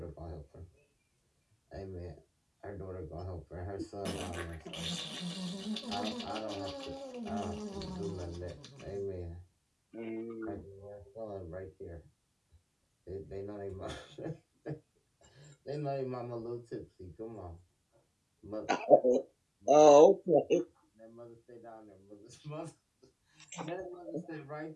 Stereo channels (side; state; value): both; identical; correlation 1.00